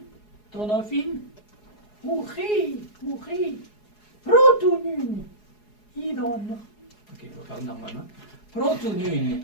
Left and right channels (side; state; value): right; late; 4.8 ms